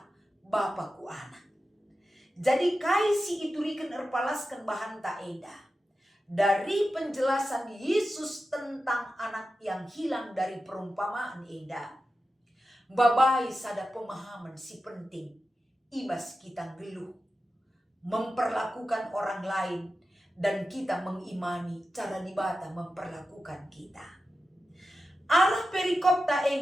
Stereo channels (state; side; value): normal; both; correlation 0.92